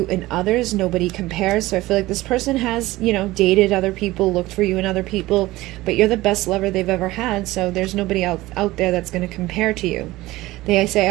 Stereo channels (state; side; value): quieter; left; 18.2 dB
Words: in others. Nobody compares. So I feel like this person has, dated other people, looked for you in other people, but you're the best lover they've ever had. So there's nobody out there that's going to compare to you. They